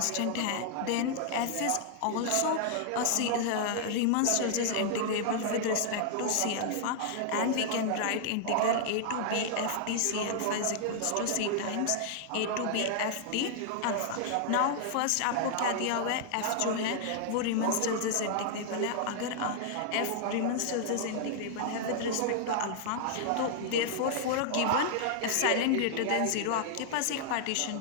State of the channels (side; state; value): both; different; correlation -0.01